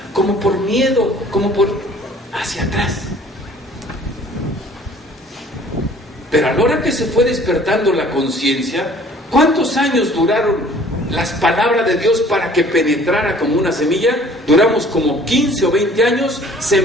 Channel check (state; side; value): normal; both; correlation 0.53